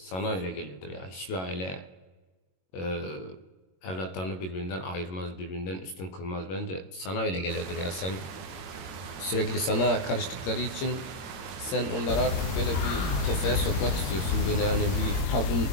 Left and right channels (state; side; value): late; right; 22 ms